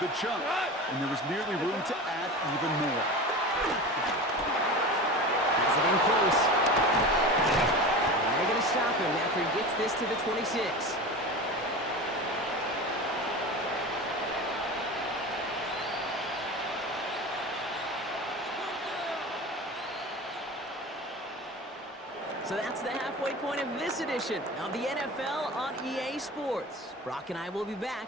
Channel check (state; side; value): normal; both; correlation 0.31